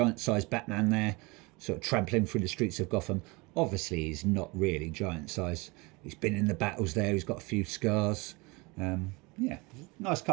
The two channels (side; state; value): left; quieter; 26.0 dB